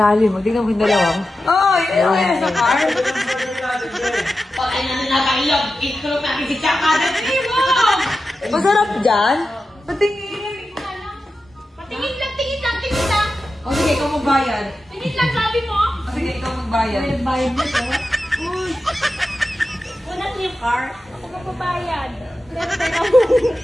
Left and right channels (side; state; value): both; normal; correlation 0.92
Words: lalim. Tingnan mo yung dalawa. Ayun sa car. Pag na nakailag, ito natin si Chakada. Masarap dyan? Patingin. Tingin lang. O sige, ikaw magbayad. Tingin lang, sabi mo. O sige, ikaw magbayad. Bayad mo to. Una yung car. Ako magbabayad.